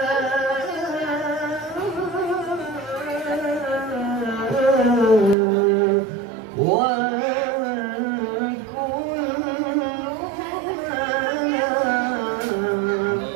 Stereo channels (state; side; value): drops out; left; at 5.4 s